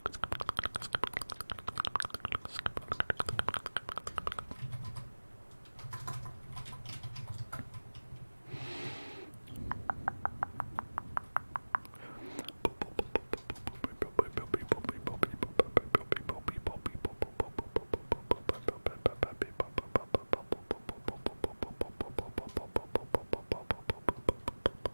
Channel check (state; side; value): inverted; both; correlation -1.00